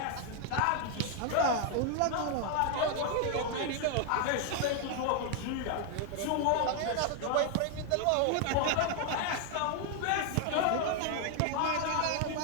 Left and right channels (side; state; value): both; different; correlation 0.00